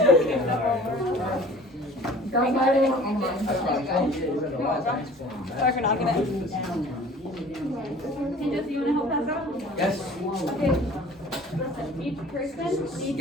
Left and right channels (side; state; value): both; normal; correlation 0.47